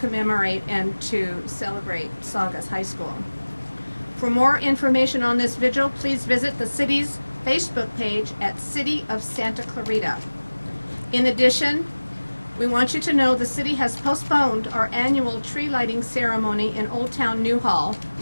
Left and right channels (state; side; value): inverted; both; correlation -1.00